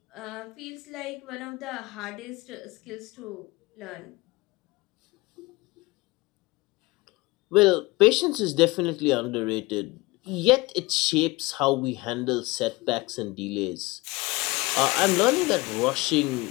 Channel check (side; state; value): right; quieter; 22.4 dB